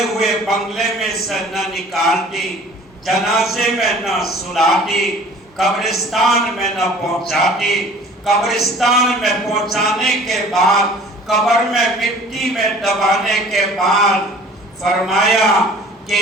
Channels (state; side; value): normal; both; correlation 0.48